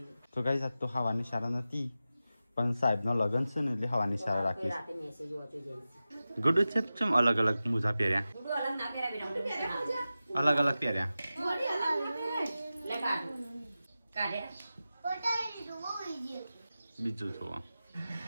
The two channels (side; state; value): both; inverted; correlation -0.94